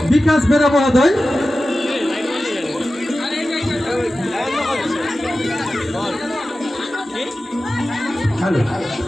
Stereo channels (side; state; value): both; normal; correlation 0.94